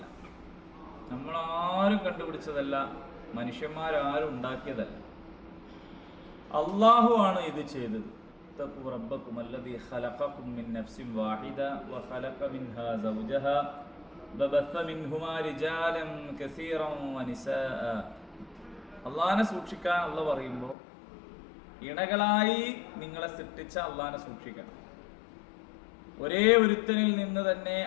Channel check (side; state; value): right; drops out; at 20.8 s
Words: നമ്മളാരും കണ്ടുപിടിച്ചതല്ല, മനുഷ്യന്മാരാരും ഉണ്ടാക്കിയതല്ല. അല്ലാഹു ആണ് ഇത് ചെയ്തത്. اتقوا ربكم الذي خلقكم من نفس واحدة وخلق منها زوجها وبث منهما رجالا كثيرا ونساء. അള്ളാഹിനെ സൂക്ഷിക്കാൻ അള്ളാഹ് പറയുമ്പോൾ ഇണകളായി നിങ്ങളെ സൃഷ്ടിച്ച അള്ളാഹിനെ സൂക്ഷിക്കണം. ഒരേ ഒരുത്തനിൽ നിന്ന് തന്നെ